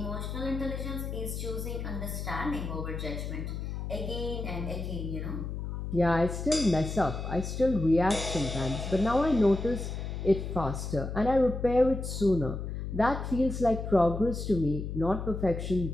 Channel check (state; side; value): noise; left; hum, 5 dB below the sound